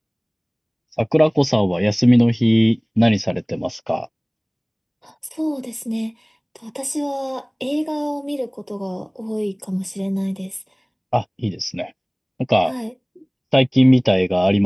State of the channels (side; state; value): both; identical; correlation 1.00